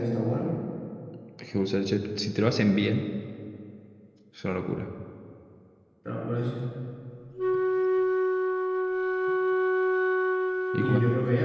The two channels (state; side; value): identical; both; correlation 1.00